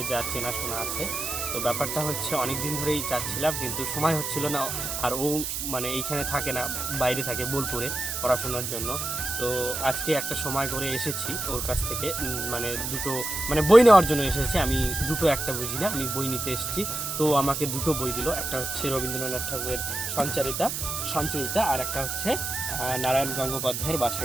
যা চেনাশোনা আছে। তো ব্যাপারটা হচ্ছে অনেক দিন ধরেই চাচ্ছিলাম, কিন্তু সময় হচ্ছিল না। আর ও মানে এইখানে থাকে না, বাইরে থাকে বোলপুরে পড়াশোনার জন্য। তো আজকে একটা সময় করে এসেছি ওর কাছ থেকে, মানে দুটো মানে বই নেওয়ার জন্য এসেছি। আমি দুটো একটা বুঝি না, আমি বই নিতে এসেছি। তো আমাকে দুটো বই দিল, একটা হচ্ছে রবীন্দ্রনাথ ঠাকুরের সঞ্চয়িতা, আর একটা হচ্ছে নারায়ণ গঙ্গোপাধ্যায়ের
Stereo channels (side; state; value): right; noise; hiss, 3 dB below the sound